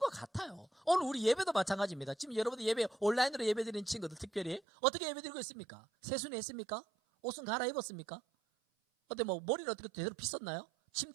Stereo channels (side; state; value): left; drops out; at 4.6 s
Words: 같아요. 오늘 우리 예배도 마찬가지입니다. 지금 여러분들 예배 온라인으로 예배 드리는 친구들 특별히 어떻게 예배 드리고 있습니까? 세수는 했습니까? 옷은 갈아입었습니까? 어때 뭐 머리를 어떻게 제대로 빗었나요?